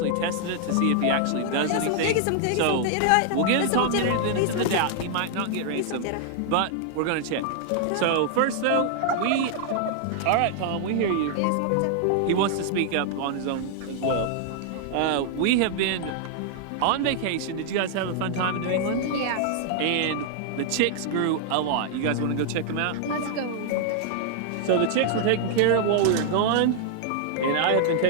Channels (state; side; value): different; both; correlation -0.01